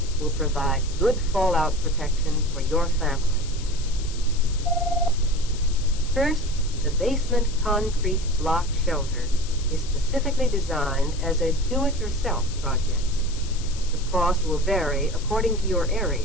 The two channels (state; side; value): noise; left; hiss, 15 dB below the sound